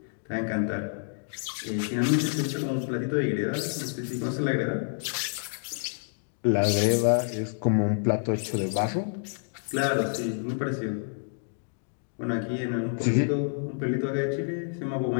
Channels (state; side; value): silent; right; digital silence